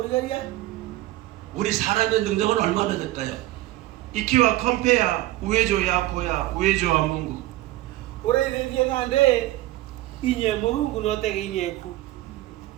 우리 사람의 능력은 얼마나 될까요? Ikiwa compare uwezo yako ya uwezo wa Mungu. Origaria ngande inye murungu no te inye ku.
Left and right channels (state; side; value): quieter; left; 16.6 dB